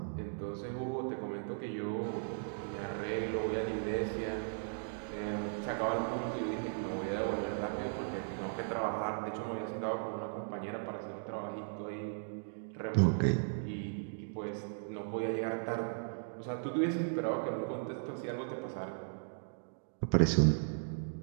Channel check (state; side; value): silent; left; digital silence